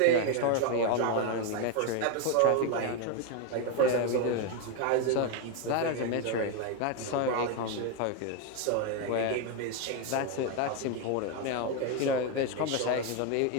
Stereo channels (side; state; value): both; different; correlation 0.01